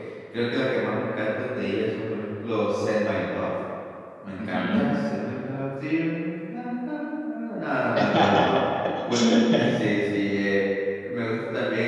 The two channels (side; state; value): both; identical; correlation 1.00